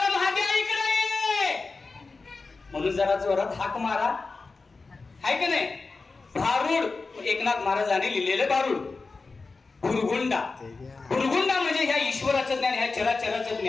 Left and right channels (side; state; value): right; quieter; 4.0 dB